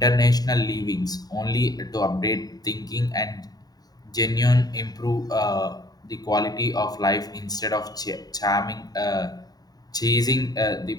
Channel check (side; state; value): right; late; 0.18 ms